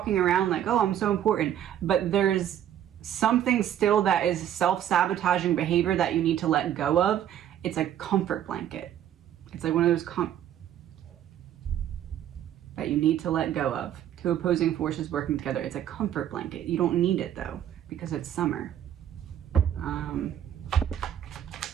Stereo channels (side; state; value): left; quieter; 10.7 dB